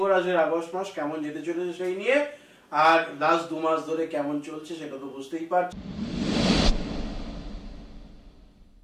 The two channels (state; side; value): identical; both; correlation 1.00